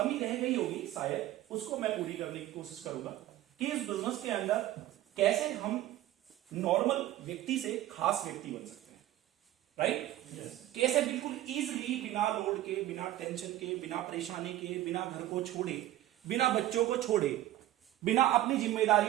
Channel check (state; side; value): quieter; left; 14.3 dB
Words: रह गई होगी शायद, उसको मैं पूरी करने की कोशिश करूंगा कि इस बिजनेस के अंदर कैसे हम नॉर्मल व्यक्ति से खास व्यक्ति बन सकते हैं, राइट? कैसे बिल्कुल इजीली, बिना लोड के, बिना टेंशन के, बिना परेशानी के, बिना घर को छोड़े, बिना बच्चों को छोड़े, बिना अपनी